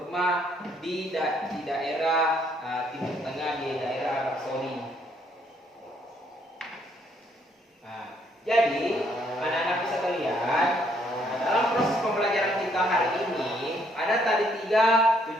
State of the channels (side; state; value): both; normal; correlation 0.68